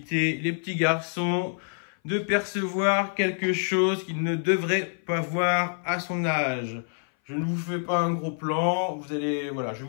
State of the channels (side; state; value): right; silent; 58 dB below the other